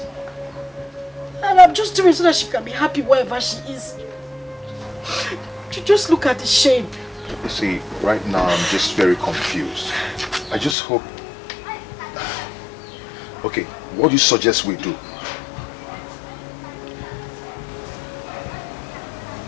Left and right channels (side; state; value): right; drops out; at 10.8 s